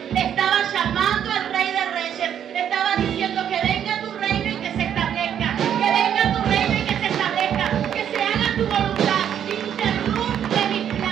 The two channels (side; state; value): left; quieter; 9.3 dB